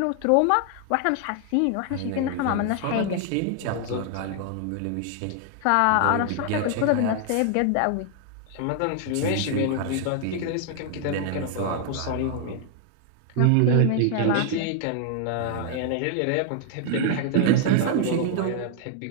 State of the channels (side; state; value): both; different; correlation 0.00